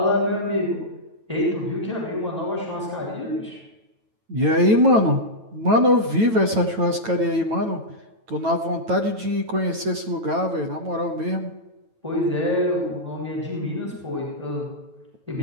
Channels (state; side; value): late; left; 9.1 ms